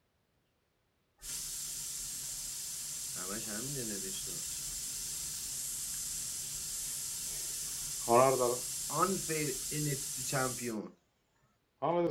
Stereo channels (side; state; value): both; identical; correlation 1.00